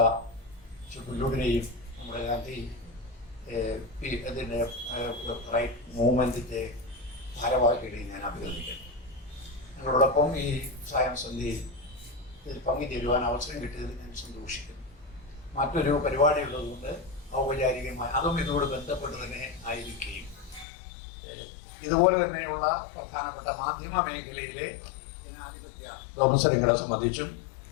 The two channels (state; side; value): drops out; right; at 20.7 s